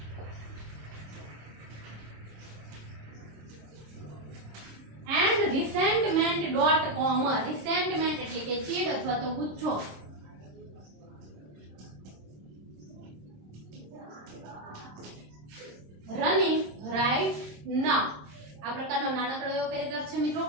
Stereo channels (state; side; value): late; left; 26 ms